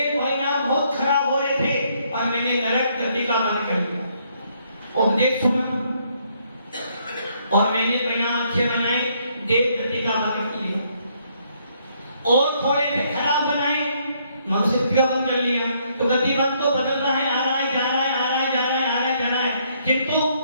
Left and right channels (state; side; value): inverted; both; correlation -0.70